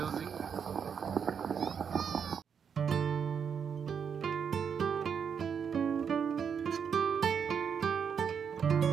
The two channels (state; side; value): quieter; left; 7.1 dB